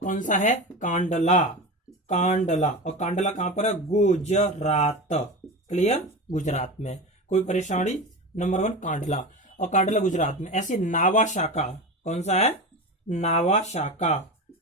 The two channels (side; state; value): both; normal; correlation 0.26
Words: सा है? कांडला। और कांडला कहां पर है? गुजरात। क्लियर, गुजरात में। कोई परेशानी? नंबर 1 कांडला, और कांडला गुजरात में। ऐसे नावासाका, कौन सा है? नावासाका।